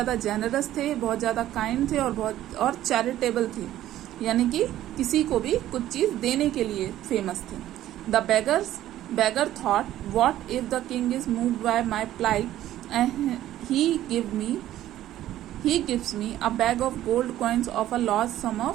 जेनरस थे, बहुत ज़्यादा काइंड थे और चैरिटेबल थे, यानी कि किसी को भी कुछ चीज़ देने के लिए फेमस थे. The beggar thought, what if the king is moved by my plight and he gives me a bag of gold coins of a large sum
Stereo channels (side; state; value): left; quieter; 13.3 dB